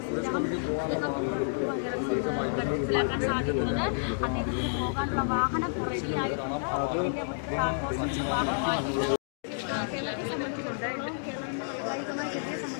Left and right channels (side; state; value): right; silent; digital silence